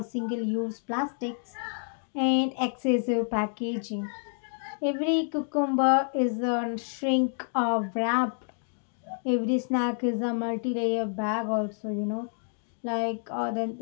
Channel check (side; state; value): right; silent; 59 dB below the other